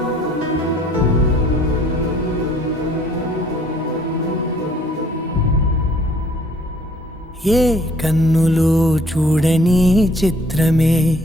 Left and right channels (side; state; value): both; normal; correlation 0.60